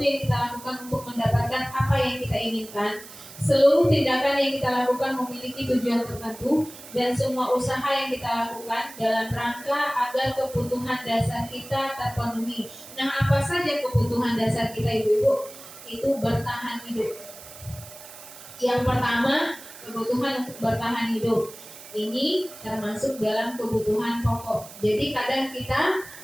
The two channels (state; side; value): noise; right; hiss, 16 dB below the sound